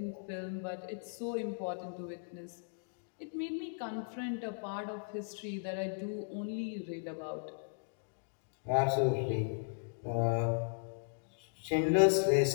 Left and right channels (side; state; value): right; silent; digital silence